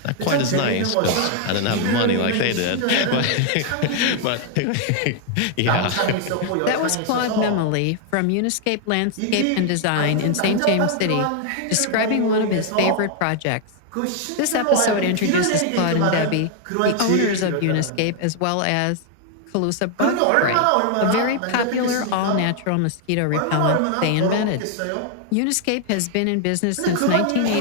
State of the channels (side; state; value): both; different; correlation 0.00